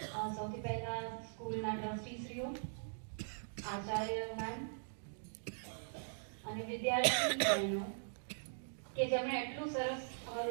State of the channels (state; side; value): silent; left; digital silence